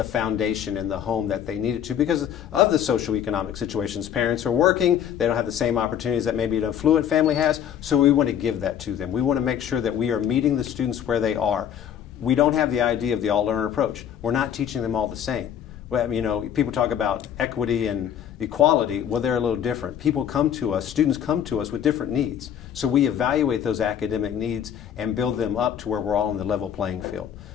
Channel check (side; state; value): right; quieter; 9.3 dB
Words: foundation in the home that they needed to because of the socioeconomic situations. Parents are working, they don't have the same opportunities that maybe an affluent family has, so we want to give that to them. We want to make sure that we are meeting the students where they are. We don't have the idea of the all-learner approach. We're not teaching them all the same. Well, you know, people talk about equity and equality. Well, they're a little different. People come to us, students come to us with different needs. So we evaluate those academic needs and build them up to where we're all on the level playing field.